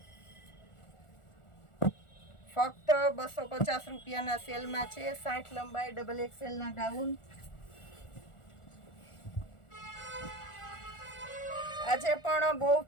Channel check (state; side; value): late; right; 1.4 ms